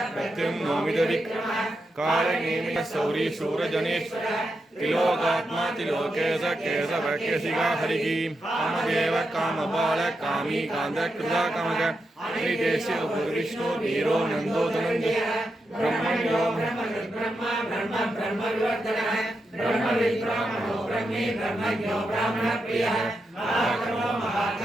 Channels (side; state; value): both; normal; correlation 0.86